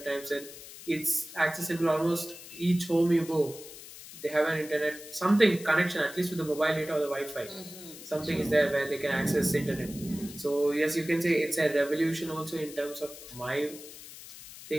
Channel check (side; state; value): left; noise; hiss, 15 dB below the sound